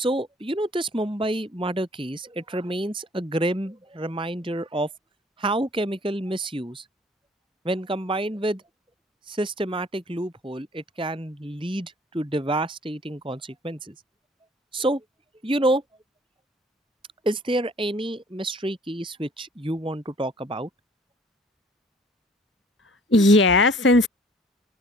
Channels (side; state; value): both; normal; correlation 0.55